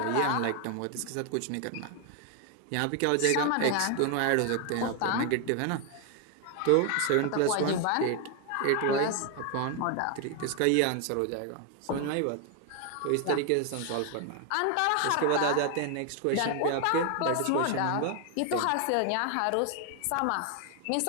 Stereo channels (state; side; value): different; both; correlation 0.01